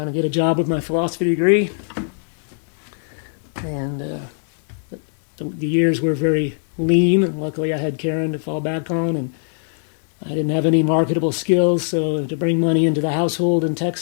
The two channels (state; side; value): silent; right; 65 dB below the other